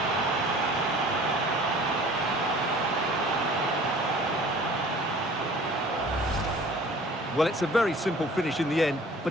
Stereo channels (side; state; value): both; normal; correlation 0.48